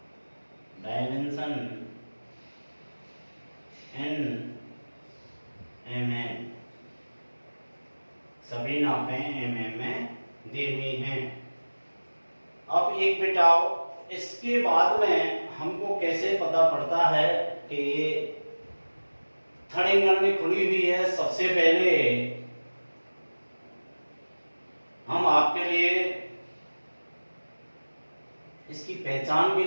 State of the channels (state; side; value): inverted; both; correlation -1.00